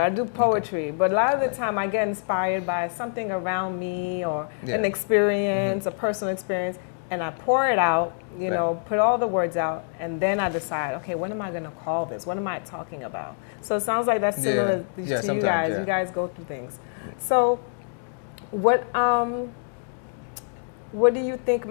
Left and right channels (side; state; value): right; silent; 61 dB below the other